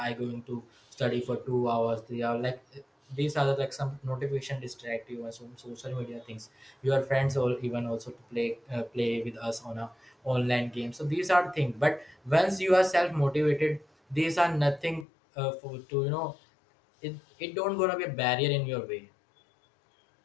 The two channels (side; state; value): right; drops out; at 15.1 s